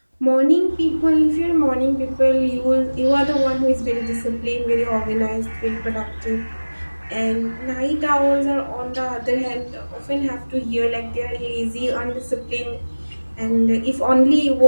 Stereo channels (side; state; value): both; inverted; correlation -1.00